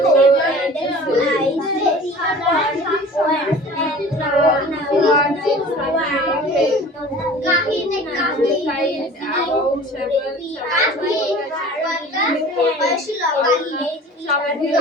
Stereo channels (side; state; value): both; normal; correlation 0.43